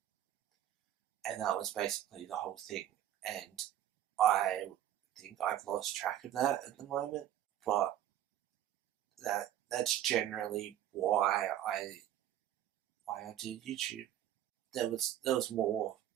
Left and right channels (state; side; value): quieter; left; 11.8 dB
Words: and that was basically the whole thing. And I think I've lost track of that at the moment, but that's generally why I do YouTube. There was more.